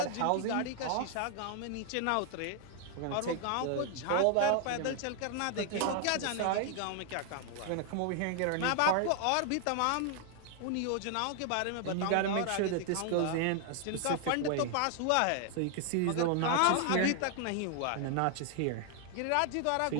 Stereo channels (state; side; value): different; both; correlation 0.00